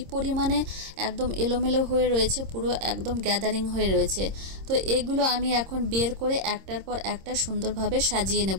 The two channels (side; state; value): left; late; 26 ms